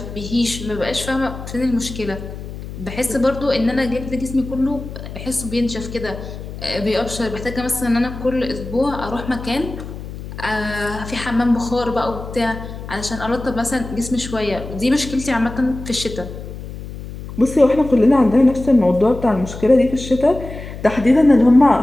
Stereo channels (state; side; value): noise; left; hum, 11 dB below the sound